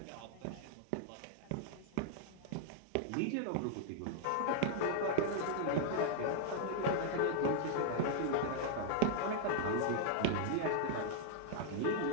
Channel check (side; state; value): both; different; correlation 0.00